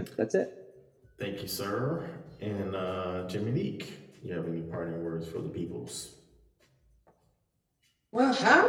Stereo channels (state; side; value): identical; both; correlation 1.00